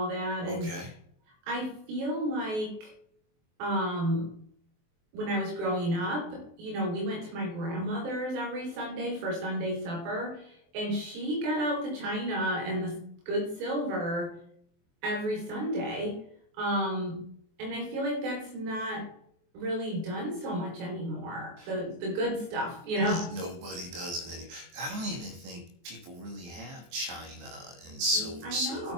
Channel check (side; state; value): left; late; 23 ms